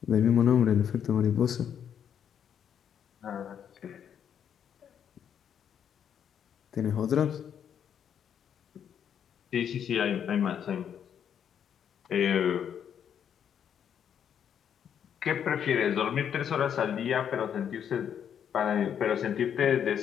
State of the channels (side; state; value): right; quieter; 8.6 dB